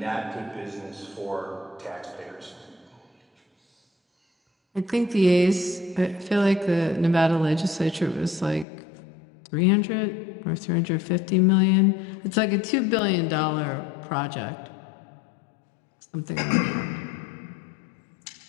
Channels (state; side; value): drops out; right; at 8.7 s